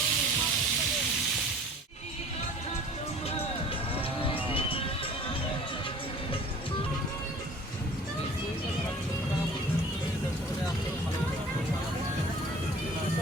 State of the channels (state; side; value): normal; both; correlation 0.47